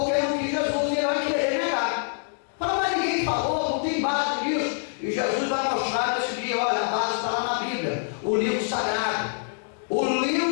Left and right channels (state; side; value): silent; right; 61 dB below the other